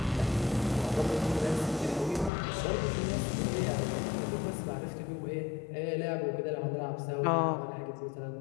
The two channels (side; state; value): right; drops out; at 2.3 s